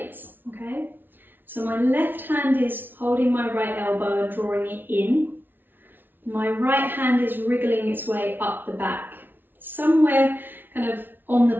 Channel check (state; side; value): late; left; 0.095 ms